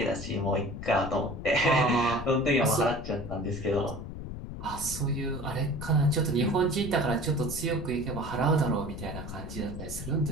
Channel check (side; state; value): left; noise; rumble, 9 dB below the sound